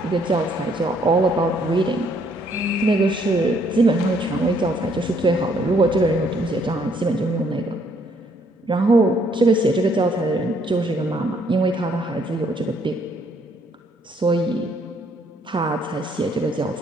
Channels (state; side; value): normal; both; correlation 0.67